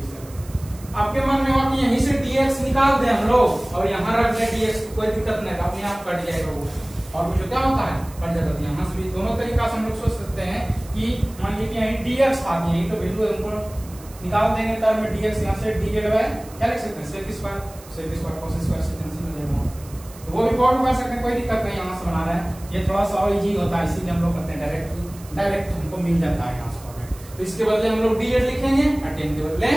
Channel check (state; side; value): noise; right; hiss, 21 dB below the sound